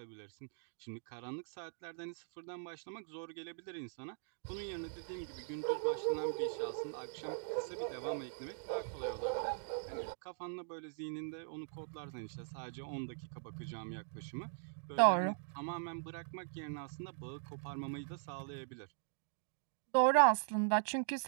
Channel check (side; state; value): left; silent; digital silence